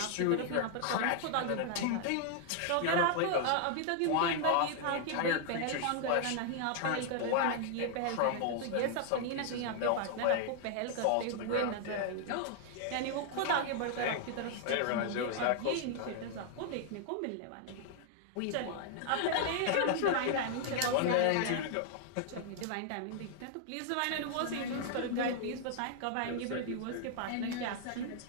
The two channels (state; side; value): different; both; correlation -0.01